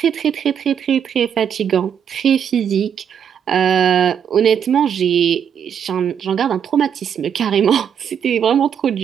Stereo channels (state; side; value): quieter; left; 8.2 dB